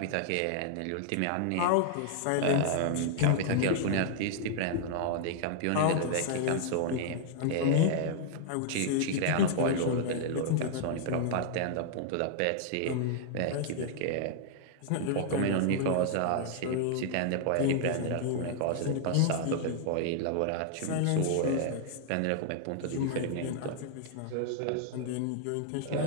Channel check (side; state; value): both; different; correlation 0.00